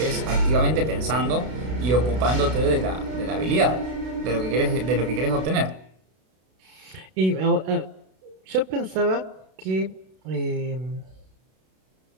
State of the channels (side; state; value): left; late; 32 ms